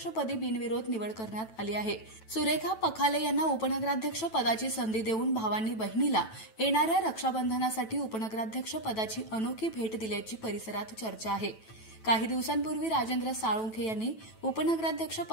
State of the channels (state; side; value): late; right; 9.1 ms